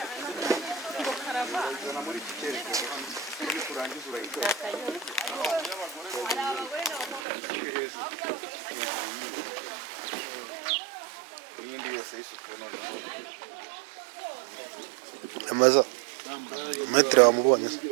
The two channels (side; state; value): left; drops out; at 7.2 s